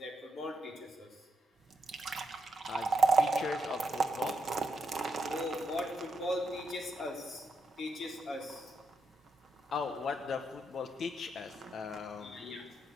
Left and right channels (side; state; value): both; normal; correlation 0.80